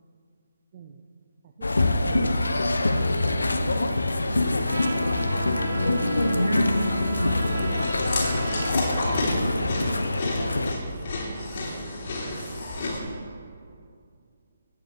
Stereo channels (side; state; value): both; inverted; correlation -0.89